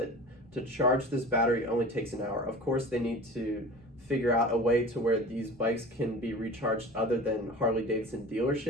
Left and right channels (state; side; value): normal; both; correlation 0.38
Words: To charge this battery only takes an hour. Of course, they need to figure out a way to where these bikes can be recharged other than Harley Davidson